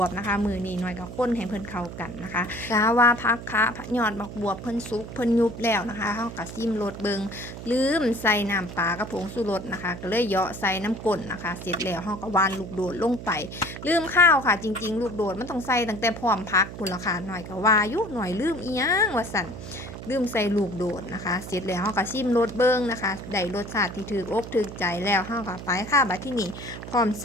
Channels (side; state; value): right; noise; hum, 11 dB below the sound